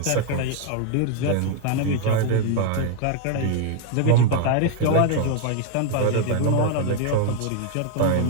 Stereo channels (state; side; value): different; both; correlation 0.00